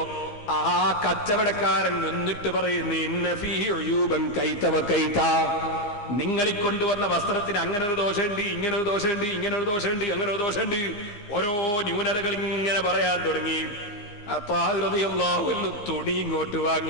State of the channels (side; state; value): right; late; 15 ms